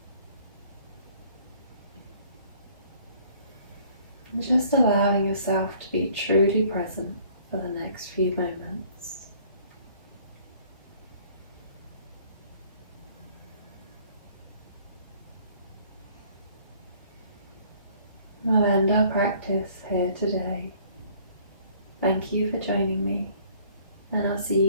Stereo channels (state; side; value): inverted; both; correlation -0.58